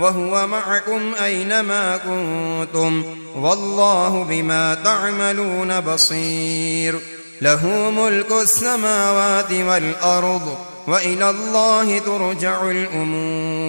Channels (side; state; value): both; inverted; correlation -1.00